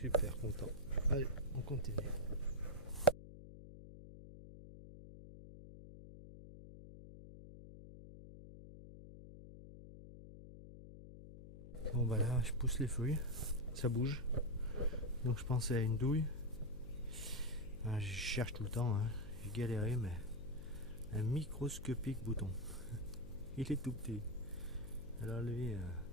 content. Allez, on continue. Bon bah là je pousse les feuilles, ça bouge. Donc je pensais à une douille. Je cherche tout le temps, hein. J'ai galéré mais un microscopique bouton. Il est tout petit. Alors lui,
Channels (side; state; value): left; noise; hum, 14 dB below the sound